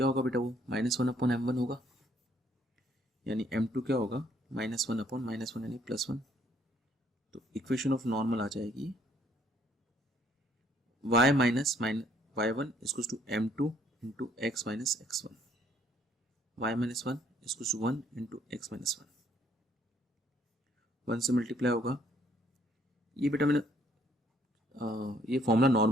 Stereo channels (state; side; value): normal; both; correlation 0.65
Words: होगा बेटा, वो -1 अपॉन m1 होगा, यानी m2 क्या होगा -1 अपॉन -1 यानी +1। तो इक्वेशन ऑफ नॉर्मल आ जाएगी y माइनस y1 इसको to m2 into x minus x1, y minus 1 इसको टू 1 इंटू x माइनस 1, 1 से मल्टीप्लाई होगा। ये बेटा मैंने ये फॉर्मूला